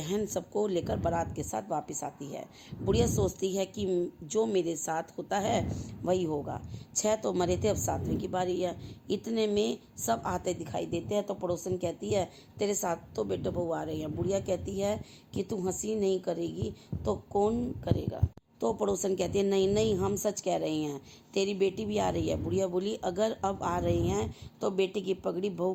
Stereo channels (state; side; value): identical; both; correlation 1.00